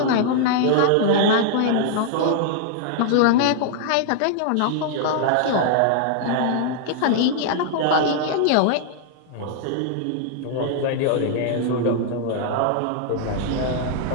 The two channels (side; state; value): both; different; correlation -0.01